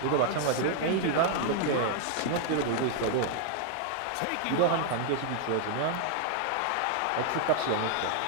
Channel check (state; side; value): different; both; correlation 0.00